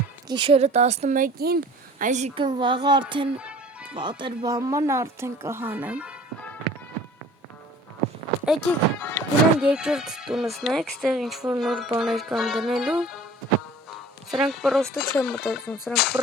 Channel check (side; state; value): both; normal; correlation 0.46